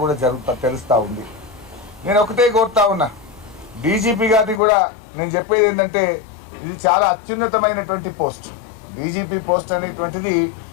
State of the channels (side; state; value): right; drops out; at 4.6 s